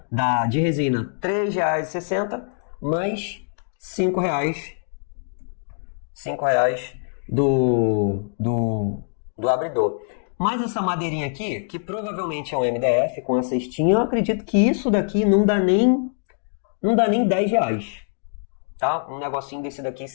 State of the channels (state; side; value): silent; right; digital silence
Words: dá de resina R$3,60 mais R$5 do abridor. Mas essa madeirinha aqui, que provavelmente é um MDF com a cestinha, eu acredito que isso daqui não dá nem R$10. Tá? Um negocinho desse daqui